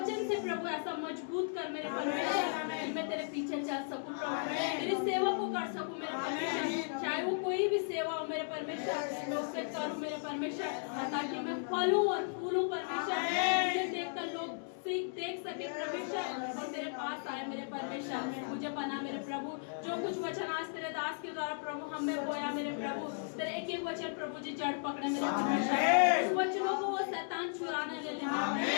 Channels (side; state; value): right; silent; digital silence